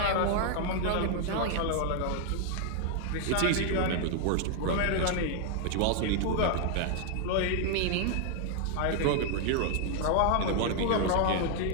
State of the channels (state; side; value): different; both; correlation 0.00